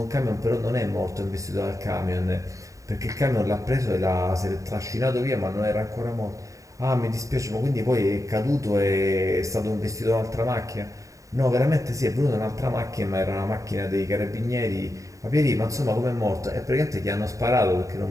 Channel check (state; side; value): late; left; 0.16 ms